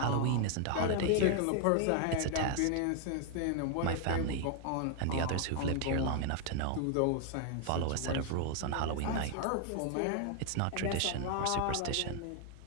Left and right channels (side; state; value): both; different; correlation 0.00